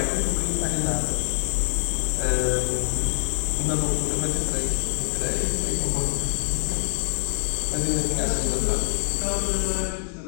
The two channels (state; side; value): silent; right; digital silence